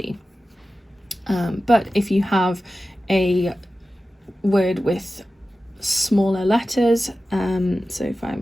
But if you have a word with smaller letters, so if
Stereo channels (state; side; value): normal; both; correlation 0.94